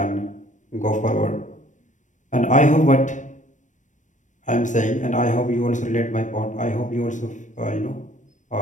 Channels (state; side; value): late; right; 0.36 ms